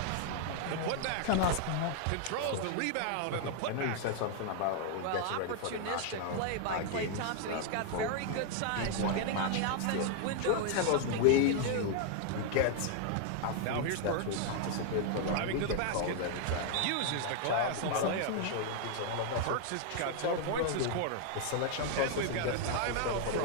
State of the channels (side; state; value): both; different; correlation 0.00